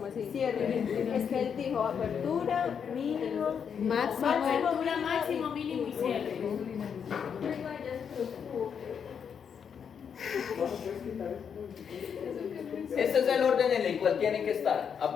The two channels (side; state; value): right; quieter; 7.2 dB